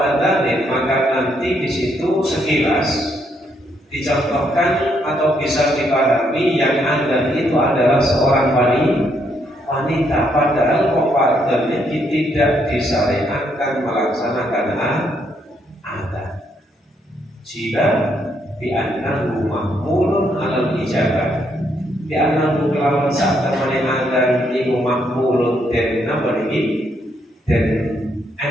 adanin maka nanti di situ sekilas dicontohkan atau bisa dipahami yang ada itu adalah seorang wanita, padahal kompadannya tidak disyariatkan melaksanakan adat. Jika bi'annahu mahmulun alal ijabah, bi'annahu kelawan saat temani adan iku mahmulun dan nama ini dan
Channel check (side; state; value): both; normal; correlation 0.74